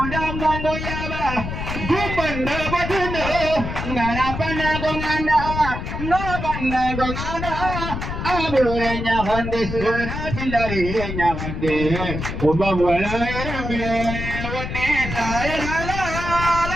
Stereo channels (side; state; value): left; noise; rumble, 5 dB below the sound